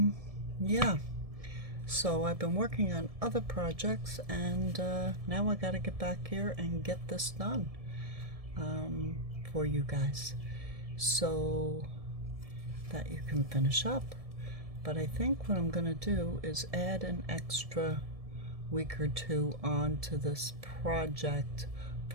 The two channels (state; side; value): late; left; 1.7 ms